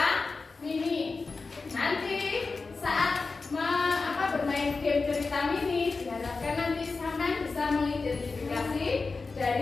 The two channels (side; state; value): right; quieter; 4.1 dB